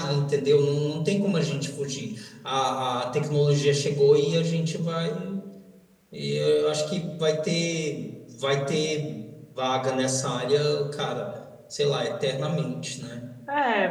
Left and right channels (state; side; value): identical; both; correlation 1.00